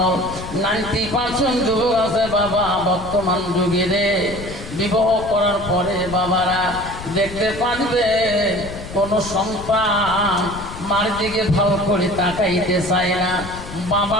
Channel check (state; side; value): noise; left; rumble, 12 dB below the sound